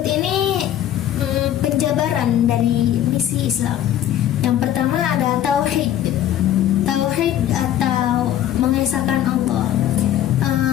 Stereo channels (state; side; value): quieter; right; 11.5 dB